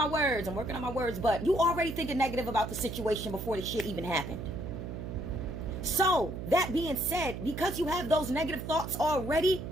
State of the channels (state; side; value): noise; right; hum, 7 dB below the sound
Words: words, but you already thinking negative about the situation before the shit even happened. So, that being said, because you have those negative thoughts already,